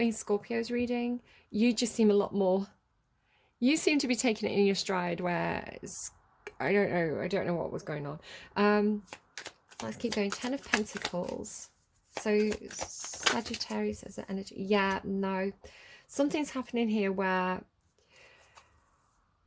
Scorpio's reading. You just seem a lot more, you seem to be taking it in your stride, where I don't know what was going on. Let's keep going. Ten of Pentacles. So Sagittarius as an energy. Yeah, no. Something's happening here where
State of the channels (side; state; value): both; identical; correlation 1.00